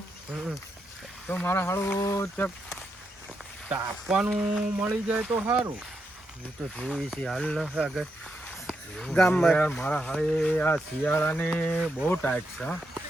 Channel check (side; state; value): both; normal; correlation 0.83